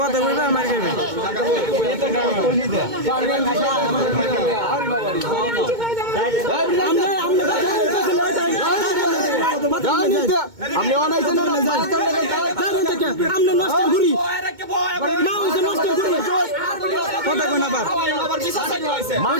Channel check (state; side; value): late; left; 2.2 ms